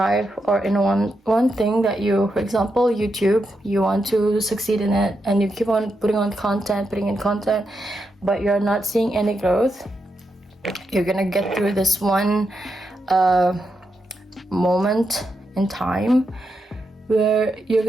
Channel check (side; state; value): both; normal; correlation 0.84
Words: or in one thing that you, for example, YouTube, you want to succeed in it, and you keep on putting in content, but you're not seeing any growth. You're gonna get through this one moment in time where you're